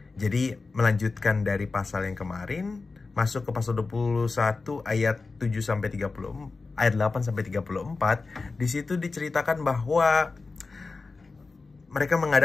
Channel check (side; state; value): right; quieter; 4.0 dB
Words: Jadi melanjutkan dari pasal yang kemarin, masuk ke pasal 21 ayat 7 sampai 30. Ayat 8 sampai 34, di situ diceritakan bahwa mereka